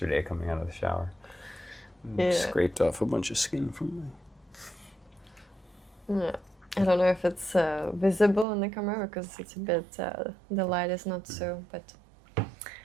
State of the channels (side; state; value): left; drops out; at 8.5 s